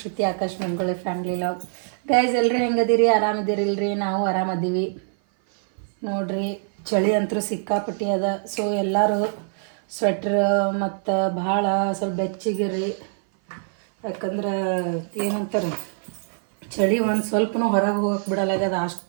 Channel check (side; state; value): left; silent; 57 dB below the other